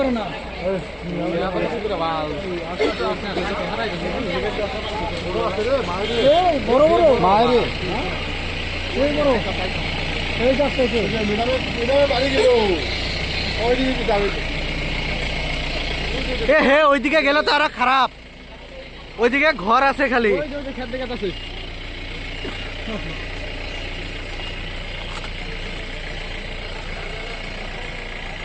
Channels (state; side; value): identical; both; correlation 1.00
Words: না। বড় বড় মায়ের এই বড় এই যাচ্ছে বাড়ি গেল ওইদিকে যাবে এ হে ওইদিকে গেলে তো আরো খারাপ, ওইদিকে ঘর আছে খালি। খেত দেখে আছে